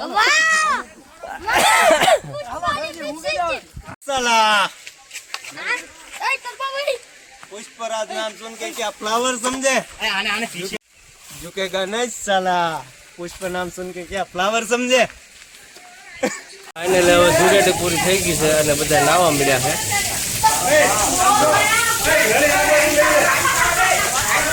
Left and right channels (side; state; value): both; identical; correlation 1.00